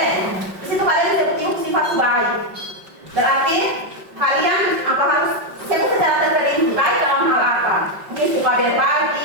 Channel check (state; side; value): late; left; 5.3 ms